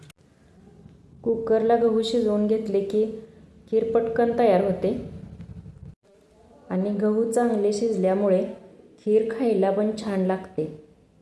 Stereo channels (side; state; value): both; identical; correlation 1.00